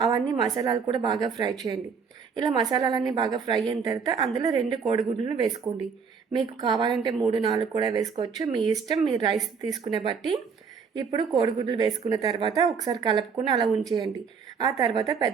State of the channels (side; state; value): left; quieter; 5.9 dB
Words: అవన్నీ మసాలాలు కూడా బాగా ఫ్రై చేయండి. ఇలా మసాలాలన్నీ బాగా ఫ్రై అయిన తర్వాత అందులో 2 కోడిగుడ్లను వేసుకోండి. మీకు కావాలంటే 3, 4 కూడా వేసుకోవచ్చు, మీ ఇష్టం, మీ రైస్ తీసుకునే బట్టి. ఇప్పుడు కోడిగుడ్లు వేసుకున్న తర్వాత ఒకసారి కలుపుకుని అలా ఉంచేయండి. ఆ తర్వాత